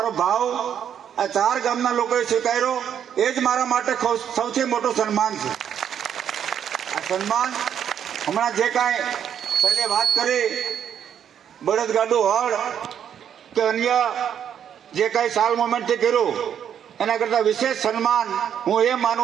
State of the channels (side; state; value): left; quieter; 8.9 dB